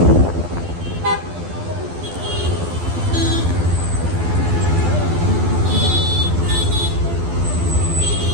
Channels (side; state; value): left; late; 12 ms